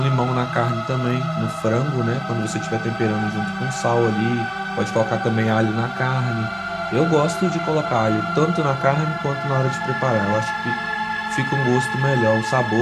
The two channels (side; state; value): both; identical; correlation 1.00